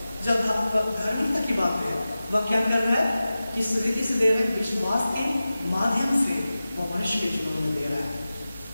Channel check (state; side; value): inverted; both; correlation -0.95